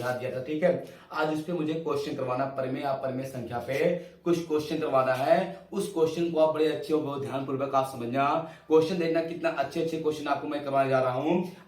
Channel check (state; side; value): identical; both; correlation 1.00